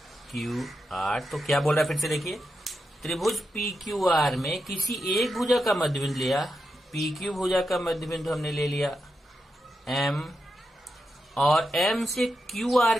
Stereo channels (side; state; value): both; normal; correlation 0.87